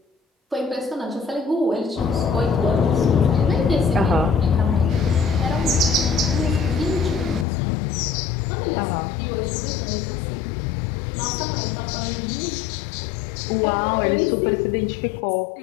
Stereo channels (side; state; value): right; drops out; at 7.5 s